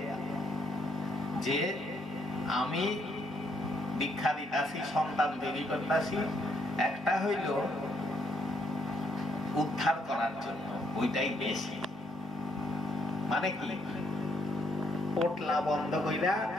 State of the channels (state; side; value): normal; both; correlation 0.72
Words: যে আমি দীক্ষা দিতাছি, সন্তান তৈরি করতাছি, একটা হইল উদ্ধার করার জন্য, ওইটাই বেশি। মানে কি, পোটলা বন্ধ কইরা